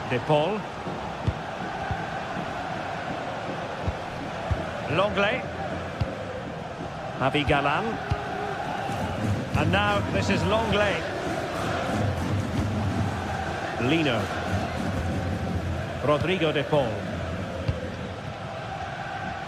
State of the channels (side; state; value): both; identical; correlation 1.00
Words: De Paul. Lenglet. Javi Galan. And now this is Lenglet. Lino. Rodrigo De Paul.